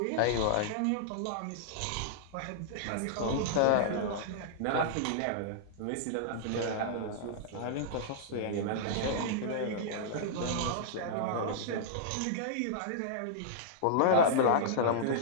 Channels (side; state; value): both; different; correlation -0.02